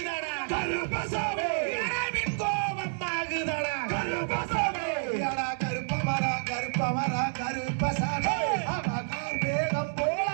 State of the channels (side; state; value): left; silent; digital silence